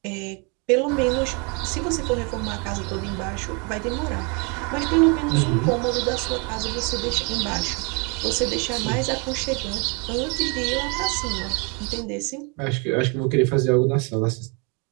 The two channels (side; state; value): left; quieter; 33.0 dB